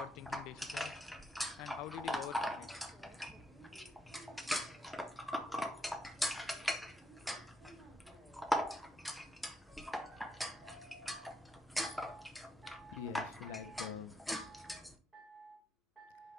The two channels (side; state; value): both; normal; correlation 0.78